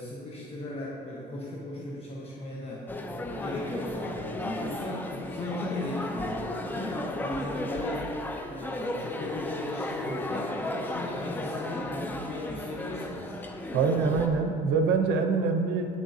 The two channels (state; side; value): normal; both; correlation 0.45